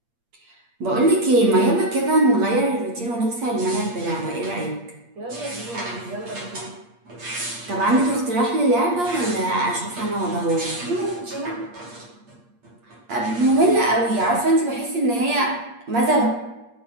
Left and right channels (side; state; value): left; late; 8.5 ms